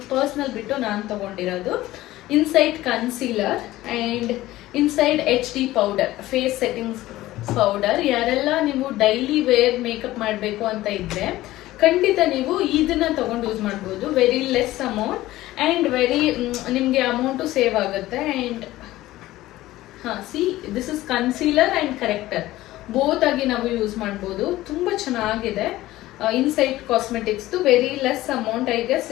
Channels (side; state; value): right; quieter; 16.4 dB